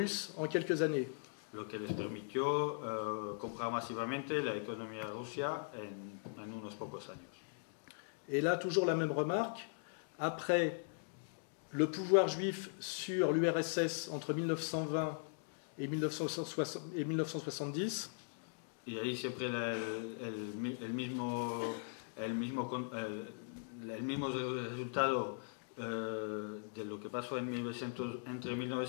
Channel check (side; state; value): right; silent; digital silence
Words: en quelques années. Lo que les permitió comprar masivamente la economía rusa en unos pocos años. Et là, toujours la même remarque, après le pouvoir juif sur l'URSS entre 1920 et 1970, Y ahí siempre el mismo resultado de lo que pasó entre